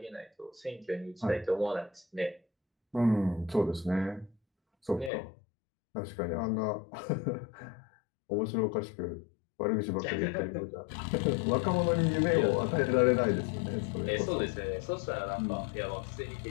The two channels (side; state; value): right; drops out; at 5.1 s